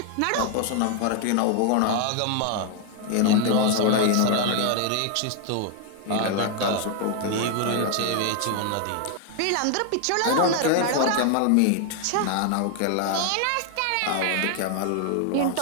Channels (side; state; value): both; different; correlation 0.00